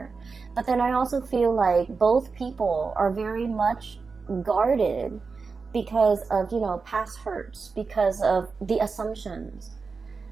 But then I also feel like both people are very much guarded because of, you know, past hurts, because of the assumptions,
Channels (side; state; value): left; quieter; 4.7 dB